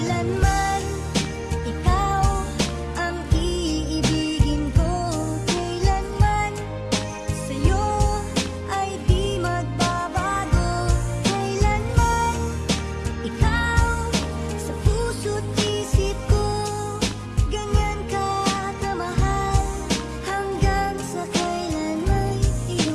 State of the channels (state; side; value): identical; both; correlation 1.00